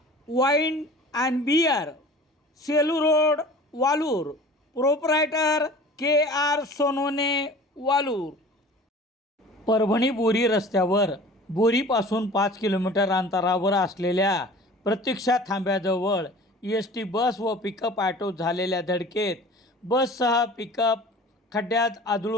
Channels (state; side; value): normal; both; correlation 0.43